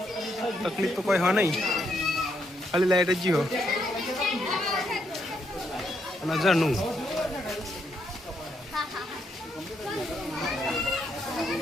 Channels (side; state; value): both; normal; correlation 0.76